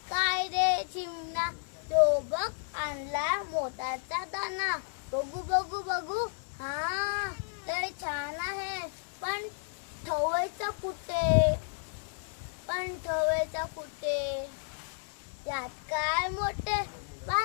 काय रे चिमणा तो बघ आणला मोत्याचा दाना बघू बघू बघू हा लय छान आहे पण ठेवायचं कुठे यात काय मोठे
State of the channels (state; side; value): silent; right; 56 dB below the other